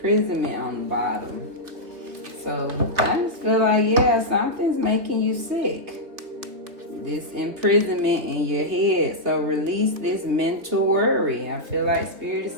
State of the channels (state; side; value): late; left; 3.2 ms